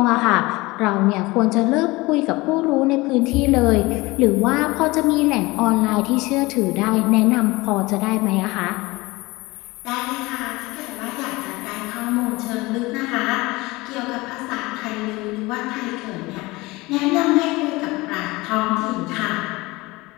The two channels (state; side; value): quieter; right; 22.0 dB